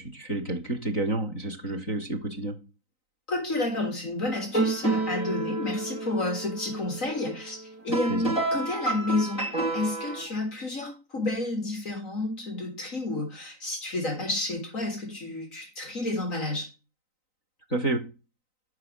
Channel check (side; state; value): right; late; 3.9 ms